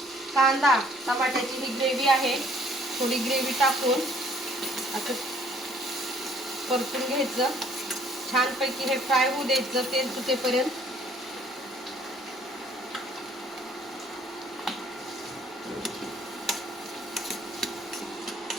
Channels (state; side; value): normal; both; correlation 0.60